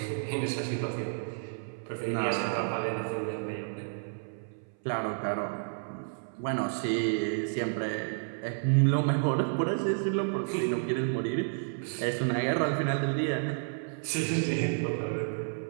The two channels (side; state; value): left; silent; 57 dB below the other